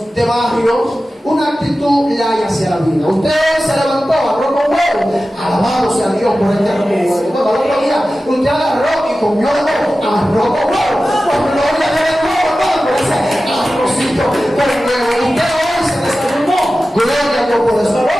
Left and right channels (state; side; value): normal; both; correlation 0.95